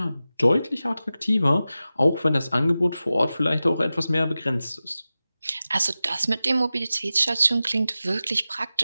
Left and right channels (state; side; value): inverted; both; correlation -0.94